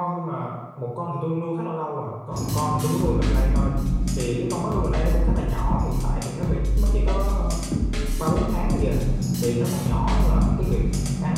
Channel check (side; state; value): both; identical; correlation 1.00